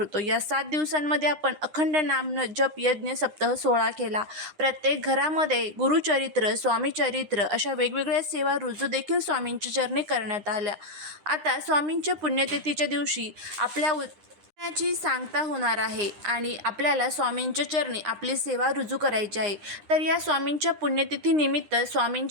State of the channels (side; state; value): left; late; 9.8 ms